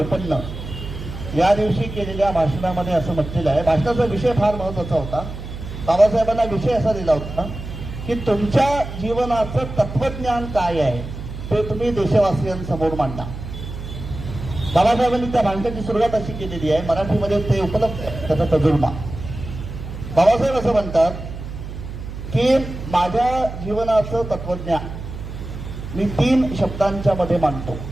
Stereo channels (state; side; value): noise; right; hum, 9 dB below the sound